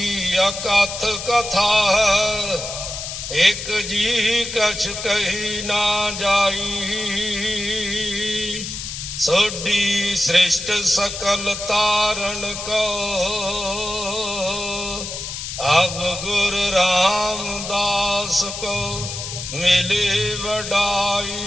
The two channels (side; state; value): left; noise; hiss, 7 dB below the sound